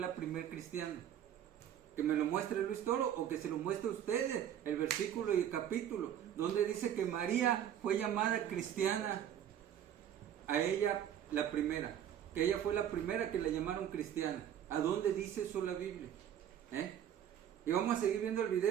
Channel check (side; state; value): left; quieter; 10.1 dB